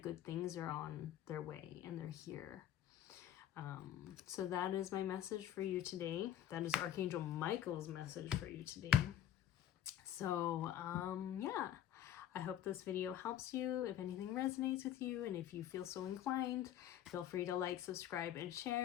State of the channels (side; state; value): right; quieter; 11.0 dB